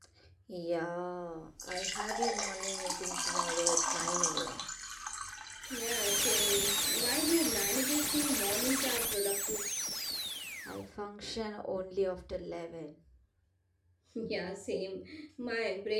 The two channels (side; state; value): both; identical; correlation 1.00